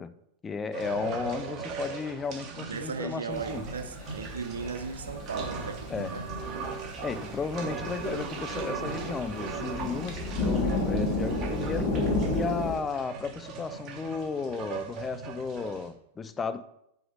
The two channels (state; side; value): normal; both; correlation 0.32